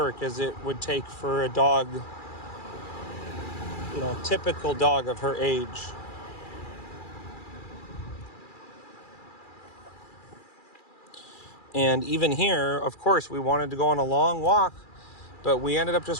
as it would take for a dog, typical dog of her age. And even here, of course, we wanted to go on a long walk, but we ended up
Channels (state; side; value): late; right; 2.4 ms